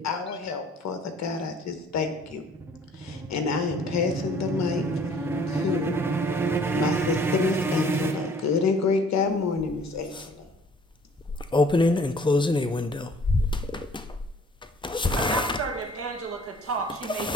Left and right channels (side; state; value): both; normal; correlation 0.54